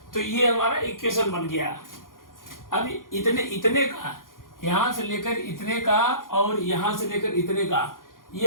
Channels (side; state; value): right; late; 0.90 ms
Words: तो ये हमारा इक्वेशन बन गया। अब इतने का, यहाँ से लेकर इतने का और यहाँ से लेकर इतने का, ये